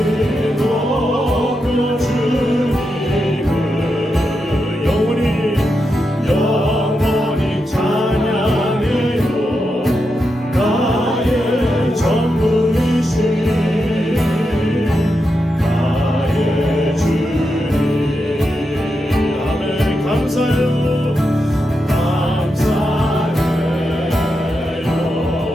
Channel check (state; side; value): normal; both; correlation 0.86